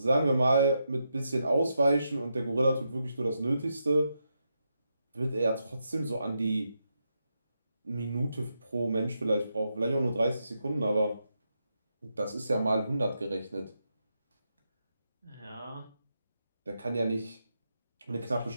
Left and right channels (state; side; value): inverted; both; correlation -0.84